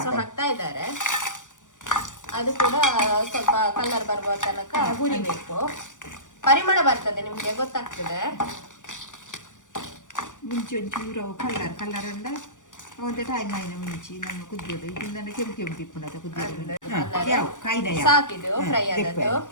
ಹಾಕ್ತಾ ಇದ್ದಾರೆ. ಅದು ಕೂಡ ಸ್ವಲ್ಪ ಕಲರ್ ಬರುವ ತನಕ ಹುರಿಬೇಕು. ಪರಿಮಳ ಬರ್ತದೆ, ನಿಮ್ಗೆ ಗೊತ್ತಾಗ್ತದೆ. ಮುಂಚೆ ಒಂಚೂರು ಕಲರ್ ಅಂಡ ಒಂದು ಟೈಮ್ ಆಯ್ನ ಮುಂಚೆ ನಮ್ಮ ಕುದಿಯೋದು ಇದನ್ನ ಕೆಂಪು ತಿಪ್ಪುಣದ ಕುದಿಯೋದು ಸಾಕಿದು ಫ್ರೈ ಆದದ್ದು.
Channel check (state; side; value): late; right; 0.87 ms